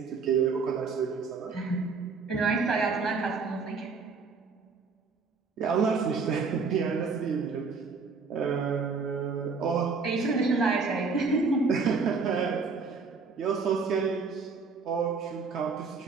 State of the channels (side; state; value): left; quieter; 4.8 dB